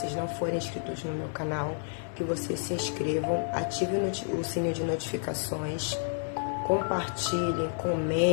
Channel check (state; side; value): silent; right; digital silence